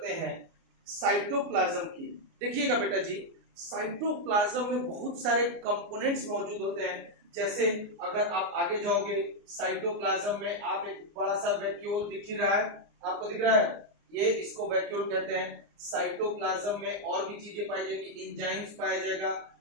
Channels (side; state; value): left; late; 29 ms